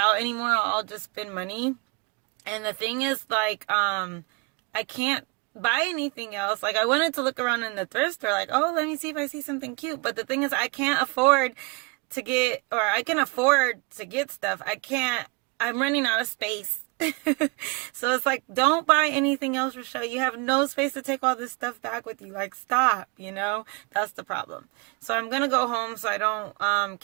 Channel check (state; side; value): quieter; left; 28.7 dB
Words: anymore. I'll just spend money. And the thing is, like, I can't buy anything else. Like, I wanted to look around in the thrift store, like, oh, let me see if I see something cute. But the thing is, I can't afford to get, or I can afford to get stuff. I'm running out of space. So it's like, don't buy anything else, Rochelle. You have no space to take all this stuff back with you. Like, stop, That's the problem. So I'm going to go home so I don't